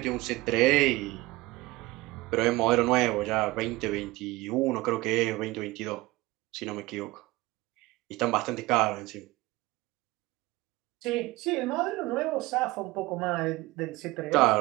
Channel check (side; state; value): left; quieter; 20.3 dB